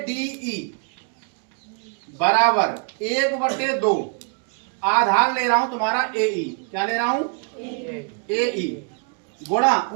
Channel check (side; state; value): left; quieter; 39.3 dB